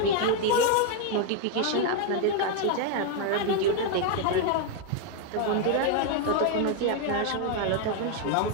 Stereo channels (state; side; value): different; both; correlation 0.00